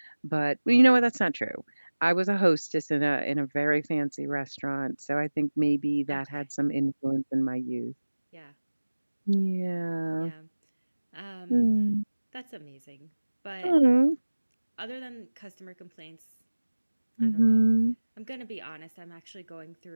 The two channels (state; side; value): inverted; both; correlation -1.00